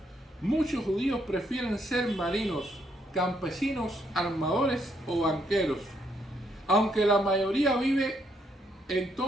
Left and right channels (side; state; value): both; normal; correlation 0.73